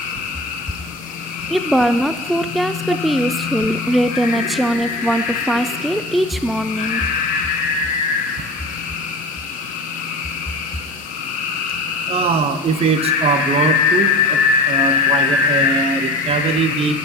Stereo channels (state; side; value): normal; both; correlation 0.36